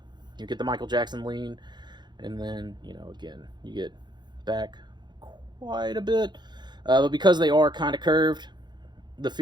get the Michael Jackson lean. And then, again, you get back quite a bit. But because they are kind of curved, the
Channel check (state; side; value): late; left; 0.21 ms